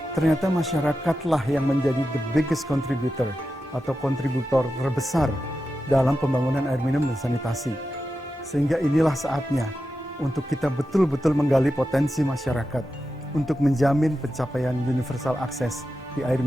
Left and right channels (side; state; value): both; normal; correlation 0.90